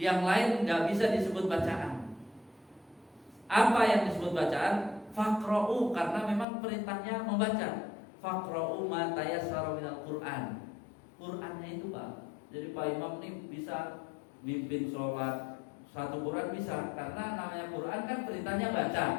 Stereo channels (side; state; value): right; drops out; at 6.5 s